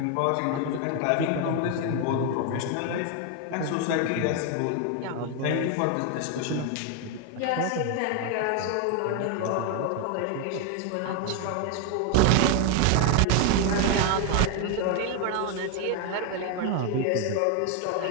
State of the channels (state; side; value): different; both; correlation 0.01